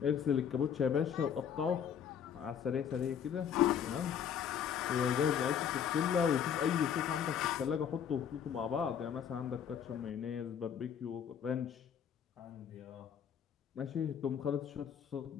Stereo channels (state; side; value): quieter; right; 8.2 dB